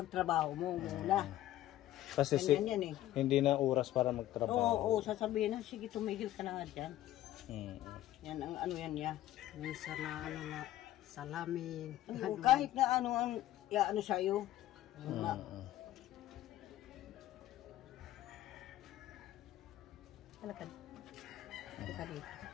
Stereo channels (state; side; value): quieter; right; 14.1 dB